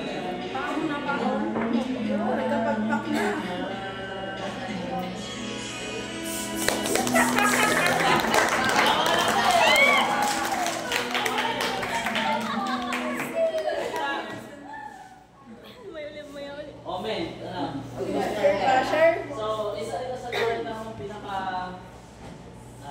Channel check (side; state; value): both; identical; correlation 1.00